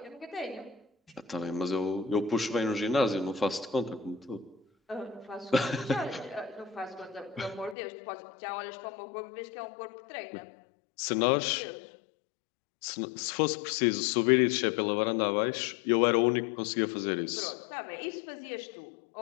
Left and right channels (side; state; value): right; drops out; at 7.8 s